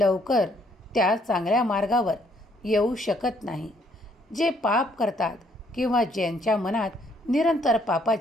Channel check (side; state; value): both; normal; correlation 0.67